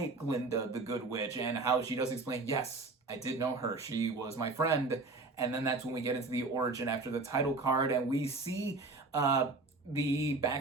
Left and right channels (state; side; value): quieter; left; 3.6 dB